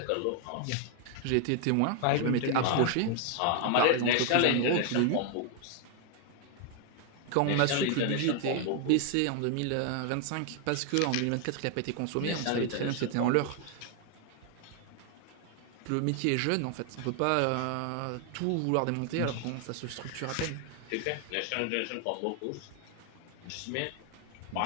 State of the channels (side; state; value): both; different; correlation 0.00